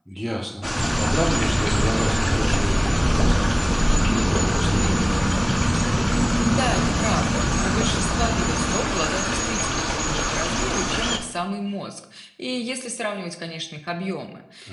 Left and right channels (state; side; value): identical; both; correlation 1.00